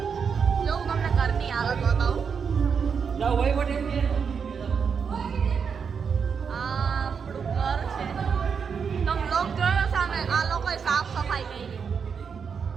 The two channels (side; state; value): left; quieter; 6.3 dB